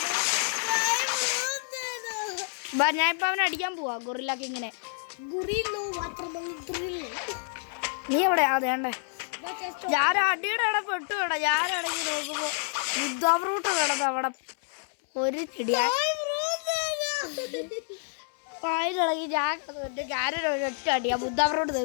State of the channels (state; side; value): silent; right; digital silence